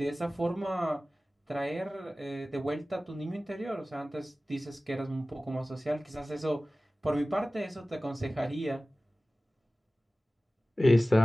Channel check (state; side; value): normal; both; correlation 0.97